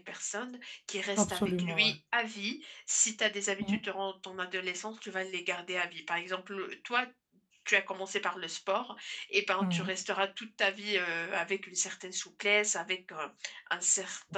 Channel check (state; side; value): identical; both; correlation 1.00